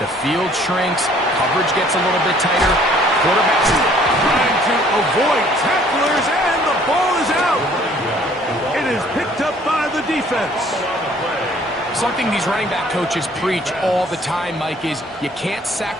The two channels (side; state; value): both; normal; correlation 0.58